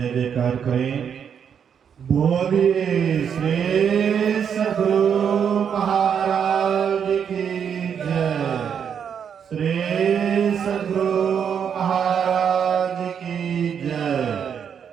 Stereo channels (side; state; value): left; quieter; 7.7 dB